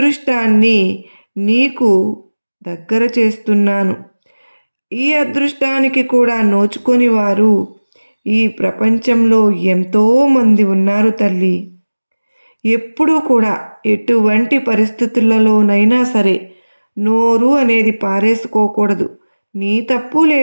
నీకు దగ్గర చేస్తున్నాను. ఈ అదృష్టానికి కూడా నోచుకొని వారు ఈ ప్రపంచంలో ఎంతోమంది ఉన్నారు తల్లి. ఎప్పుడూ కూడా ఎటువంటి పరిస్థితులలోనైనా సరే నోరు అనేది పారేసుకోకూడదు. నీ తప్పు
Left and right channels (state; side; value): inverted; both; correlation -1.00